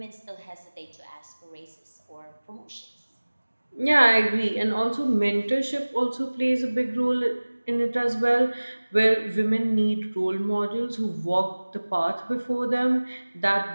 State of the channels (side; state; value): both; inverted; correlation -1.00